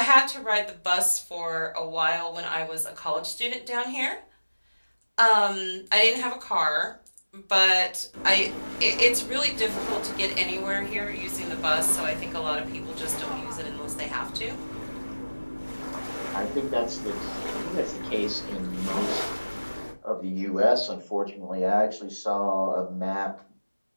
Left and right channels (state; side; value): inverted; both; correlation -1.00